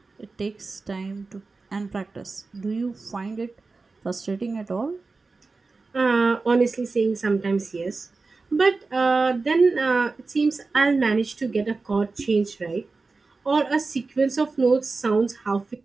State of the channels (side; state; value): left; quieter; 3.9 dB